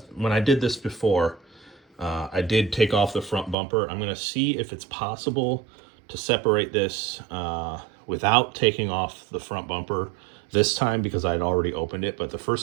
I did this before, I did take off the front bumper. I'm going to see if it's possible to separate this without taking off the front bumper this time, because I'd already opened it. But the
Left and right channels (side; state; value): left; drops out; at 3.6 s